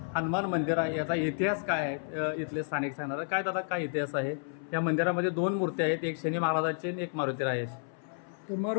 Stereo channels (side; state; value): right; silent; 57 dB below the other